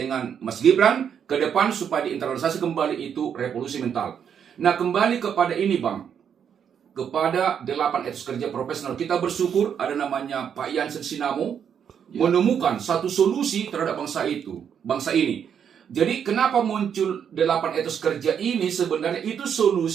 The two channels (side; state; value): left; quieter; 8.0 dB